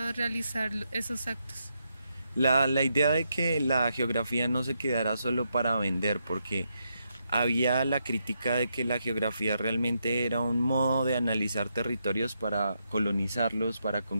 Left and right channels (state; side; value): inverted; both; correlation -0.81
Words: realizar esos actos? La idea de que la geografía no se quedara solo para vender, porque había la crítica de que la geografía realmente era un modo de analizar territorios para colonizarlos, para